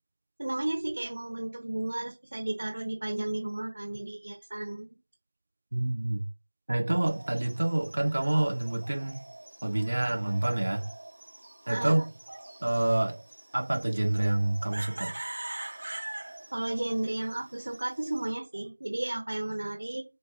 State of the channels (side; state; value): both; inverted; correlation -1.00